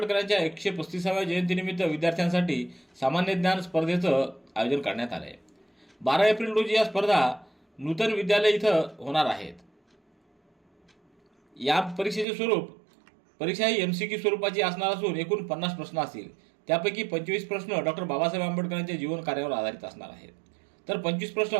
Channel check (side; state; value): left; drops out; at 12.2 s